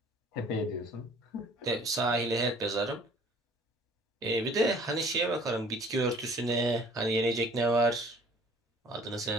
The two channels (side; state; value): both; normal; correlation 0.53